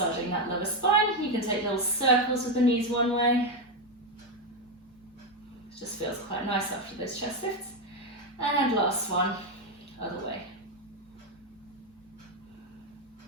that lower spine. You can take little circles with the knees one way. It just feels quite nice after those chest lifts. And last one, other way.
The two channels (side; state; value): both; normal; correlation 0.07